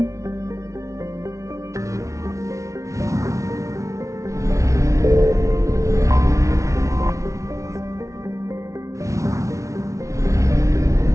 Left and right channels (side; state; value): left; late; 0.15 ms